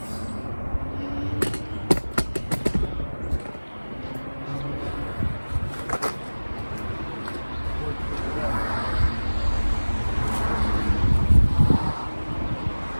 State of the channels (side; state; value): both; inverted; correlation -1.00